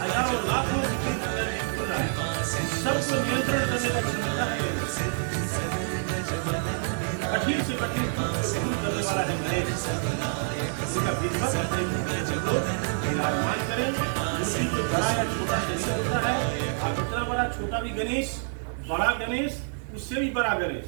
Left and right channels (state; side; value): silent; left; digital silence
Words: हजारों लाखों सबको नियंत्रण करने का क्षमता है। कठिन से कठिन करने वाला है गणेश, इसका विधिवत विराजमान करें। जो बड़ा या छोटा शरीर होता है, आप इतना बड़ा छोटा भी गणेश, बड़ा गणेश, उससे भी बड़ा गणेश,